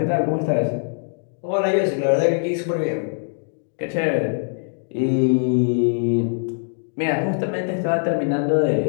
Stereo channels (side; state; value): right; silent; 64 dB below the other